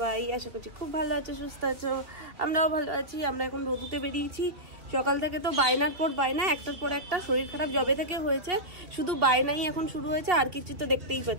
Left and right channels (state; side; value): late; left; 2.9 ms